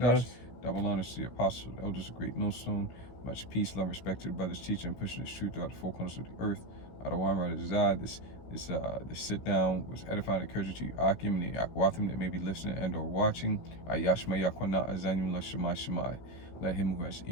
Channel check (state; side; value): late; right; 16 ms